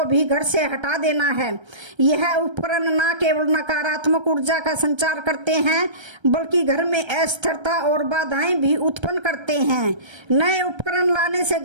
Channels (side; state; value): left; late; 1.3 ms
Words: भी घर से हटा देना है। यह उपकरण न केवल नकारात्मक ऊर्जा का संचार करते हैं बल्कि घर में अस्थिरता और बाधाएं भी उत्पन्न करते हैं। नए उपकरण लाने से